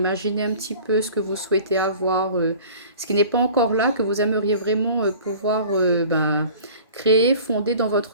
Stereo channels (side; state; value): both; inverted; correlation -0.44